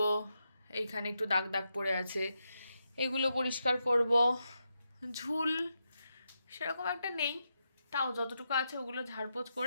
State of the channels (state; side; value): inverted; both; correlation -0.85